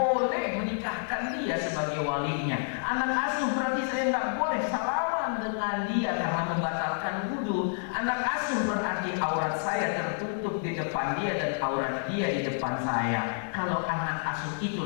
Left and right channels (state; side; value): silent; right; digital silence